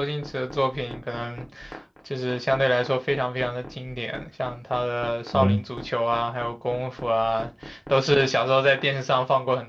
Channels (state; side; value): identical; both; correlation 1.00